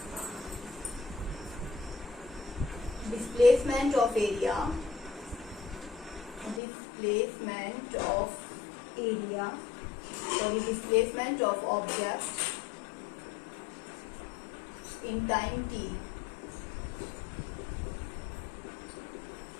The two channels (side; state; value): right; drops out; at 6.6 s